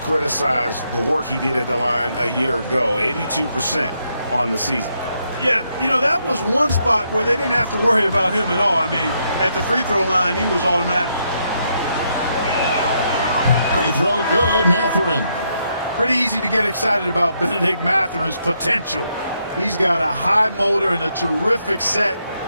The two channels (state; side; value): inverted; both; correlation -0.77